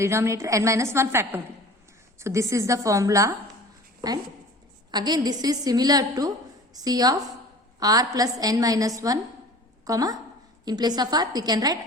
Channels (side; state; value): both; normal; correlation 0.42